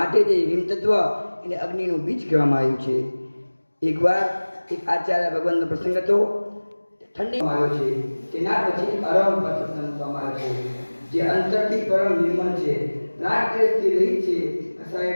જે રીમ તત્વ એને અગ્નિનું બીજ કહેવામાં આવ્યું છે. એકવાર એક આચાર્ય ભગવાનનો પ્રસંગ હતો. ઠંડીમાં આવ્યો છે, તેના પછી અરમ પર પ્રસંગ મૂકવામાં આવ્યો છે. જે અંતરથી પરમ નિર્મળ છે, રાગદ્વેષથી રહિત છે,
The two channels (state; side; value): inverted; both; correlation -1.00